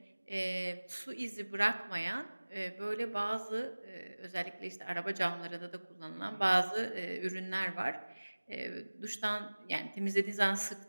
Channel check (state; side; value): inverted; both; correlation -1.00